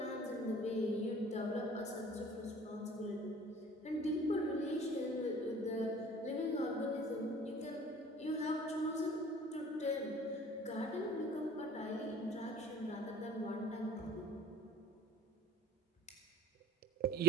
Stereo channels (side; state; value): both; normal; correlation 0.49